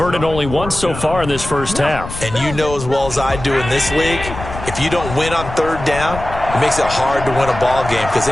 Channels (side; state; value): left; noise; rumble, 10 dB below the sound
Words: only once so far in this first half. And you know as well as I do in this league, if you don't win on third down, it makes it hard to win a ball game because